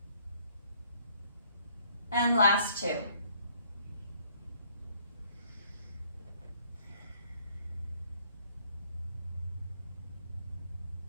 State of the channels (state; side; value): inverted; both; correlation -0.63